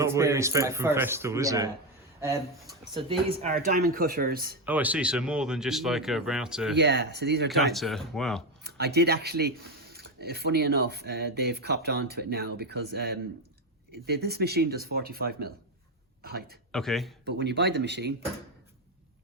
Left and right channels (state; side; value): normal; both; correlation 0.10